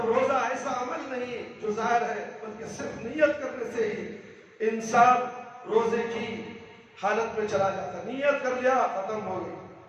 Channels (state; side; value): identical; both; correlation 1.00